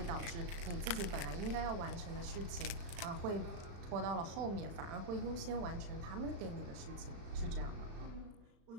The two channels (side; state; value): left; late; 35 ms